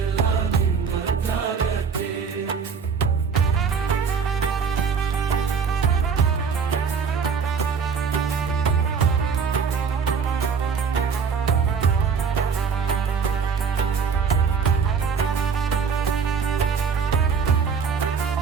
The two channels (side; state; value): left; quieter; 6.1 dB